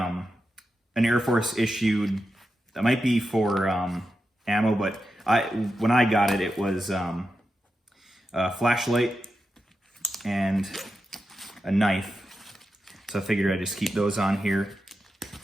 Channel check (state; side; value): normal; both; correlation 0.88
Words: Air Force issued, that might be for ammo, but when I got it, it was a flashlight and a knife. So I figured I'd just keep those on here.